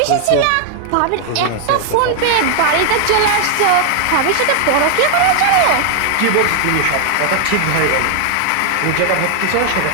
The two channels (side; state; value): both; different; correlation 0.00